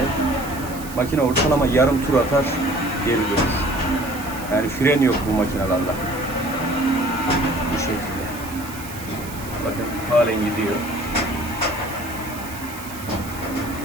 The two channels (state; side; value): noise; right; hiss, 15 dB below the sound